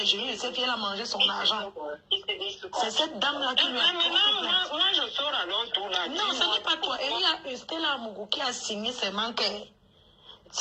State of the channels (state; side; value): identical; both; correlation 1.00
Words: gélules de cette fille, elle a mangé son argent. C'est cette dame-là qui lui a porté plainte. Moi, je sors alors tout là. Non, ce n'est pas toi. Et il y a Stella Mougou qui a signé ses manquets.